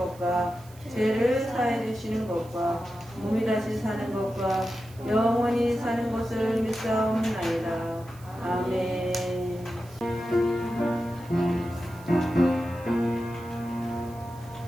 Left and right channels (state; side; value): noise; right; hiss, 24 dB below the sound